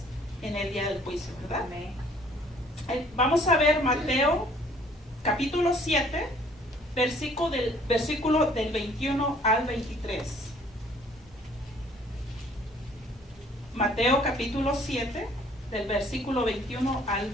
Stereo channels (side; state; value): both; normal; correlation 0.58